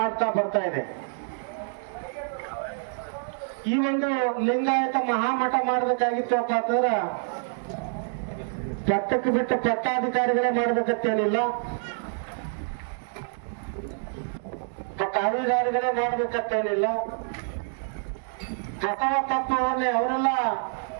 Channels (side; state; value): left; silent; 60 dB below the other